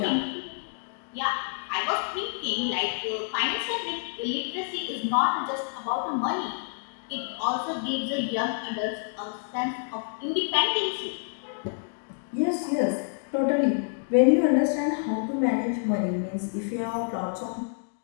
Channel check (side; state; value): right; silent; digital silence